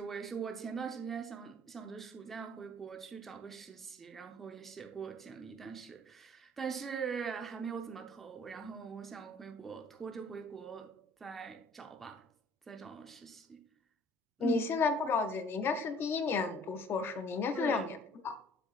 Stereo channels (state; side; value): normal; both; correlation 0.55